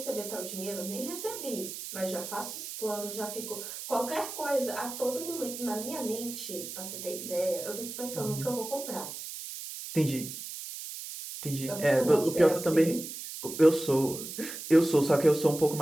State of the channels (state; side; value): noise; right; hiss, 9 dB below the sound